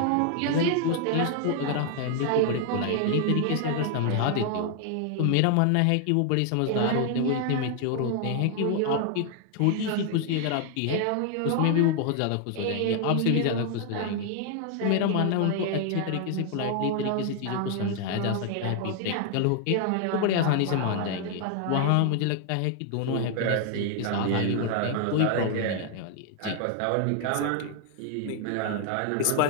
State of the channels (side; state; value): both; different; correlation 0.00